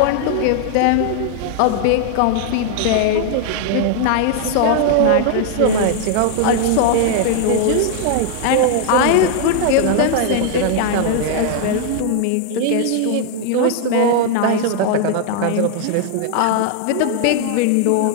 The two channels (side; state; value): both; different; correlation 0.00